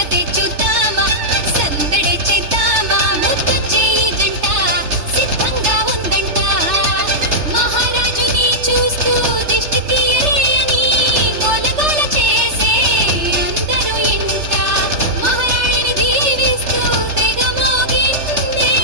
చూద్దామా సందడే చేద్దామా ముద్దు చేయి జంట సిద్ధంగా ఉందంట మహారాజుని చూస్తూ దిష్టి తీయరే అని గోలగోల చేసే అందరూ ఇంట మహారాణిని దీవిస్తూ తెగ మోగిందే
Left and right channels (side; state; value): left; late; 3.3 ms